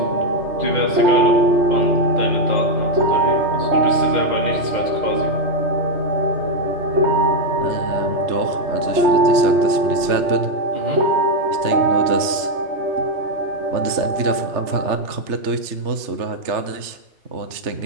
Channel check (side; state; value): left; late; 3.3 ms